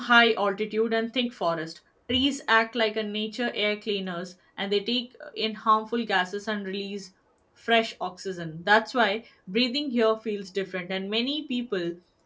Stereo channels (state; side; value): identical; both; correlation 1.00